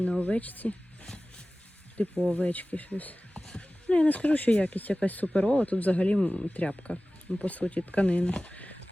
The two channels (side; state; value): both; normal; correlation 0.97